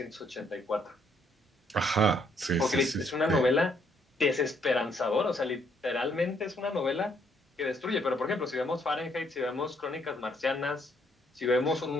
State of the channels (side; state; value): both; normal; correlation 0.70